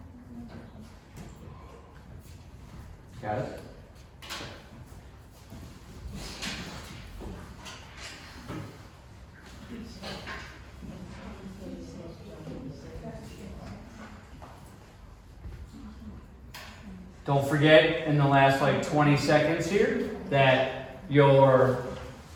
Got it? Don't forget in the last like 20 seconds here that your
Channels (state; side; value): identical; both; correlation 1.00